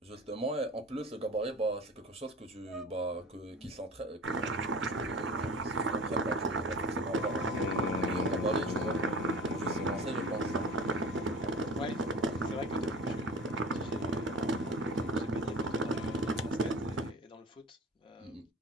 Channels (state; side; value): normal; both; correlation 0.39